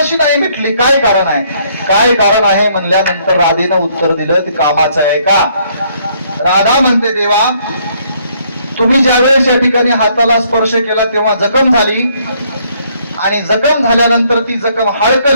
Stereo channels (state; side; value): inverted; both; correlation -0.67